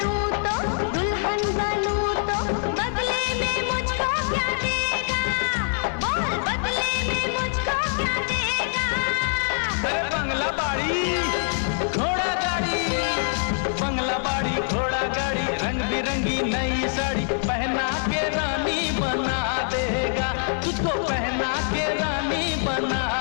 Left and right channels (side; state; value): right; silent; 59 dB below the other